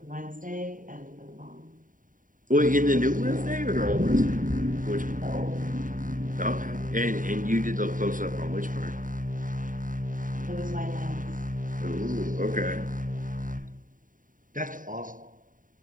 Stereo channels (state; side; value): late; left; 0.39 ms